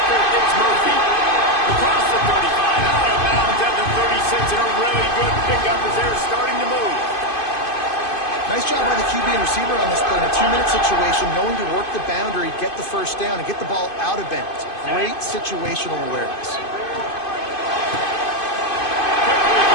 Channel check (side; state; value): right; late; 2.5 ms